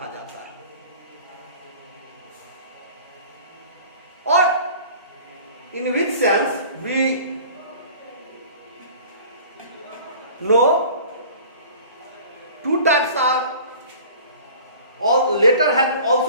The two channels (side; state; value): both; inverted; correlation -0.45